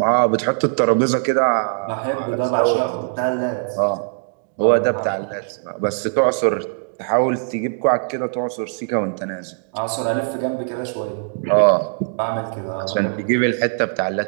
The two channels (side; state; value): left; silent; digital silence